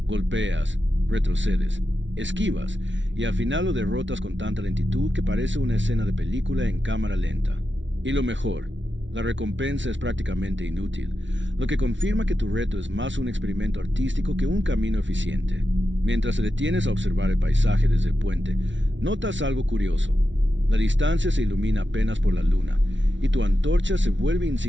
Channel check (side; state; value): left; late; 0.55 ms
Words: Golpeas, retrocedes, esquivas, y al final lo derrotas con tanta lentitud que parece una escena de película en cámara lenta. Y lo mejor, la recompensa es prácticamente inútil, lo que confirma que tu reto es más un experimento artístico que un camino eficiente. Mientras te detienes a observar el paisaje desde el puente, notas algo curioso. La distancia se ilumina apenas por la luna, y tu antorcha se vuelve